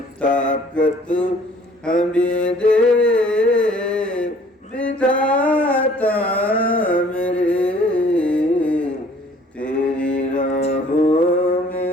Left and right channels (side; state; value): both; normal; correlation 0.55